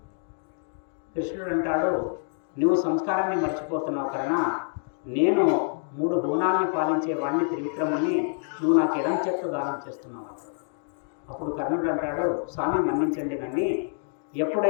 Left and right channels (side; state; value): right; silent; digital silence